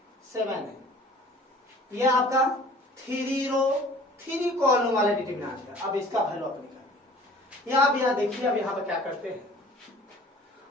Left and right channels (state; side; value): normal; both; correlation 0.48